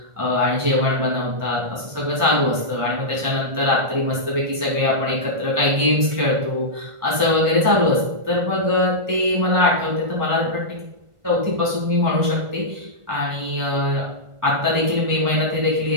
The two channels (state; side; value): late; left; 1.5 ms